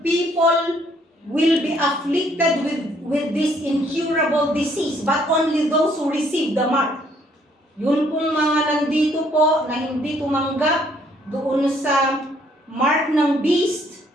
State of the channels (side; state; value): both; normal; correlation 0.65